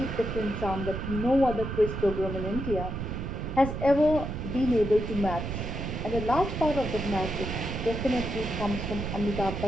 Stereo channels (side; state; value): right; noise; rumble, 5 dB below the sound